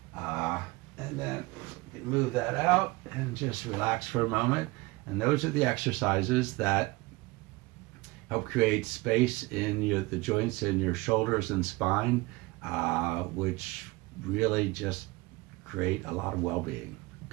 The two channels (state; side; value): quieter; left; 22.7 dB